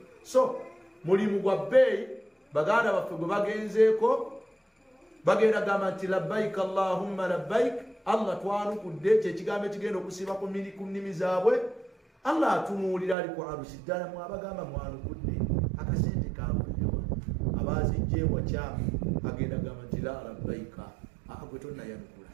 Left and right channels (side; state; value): left; drops out; at 13.2 s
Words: So mulimu gwa bbeeyi baganda baffe gwe bagenzeeko bagenda gamba nti labbaik allahumma labbaik allah twanukudde kyekigambo ekigenda okusiiba ku nnimi zaabwe allah atunuulira ali ku arusi ddala mwabagamba mwanukudde akasente kaabulirwa abazijjeewa kyamu agenda gamba nti la labbaika gwe tonnayanukula